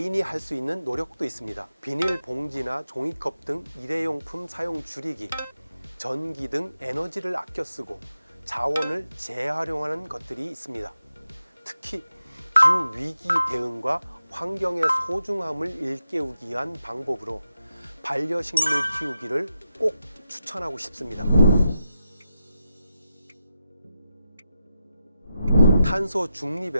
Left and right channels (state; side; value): inverted; both; correlation -0.88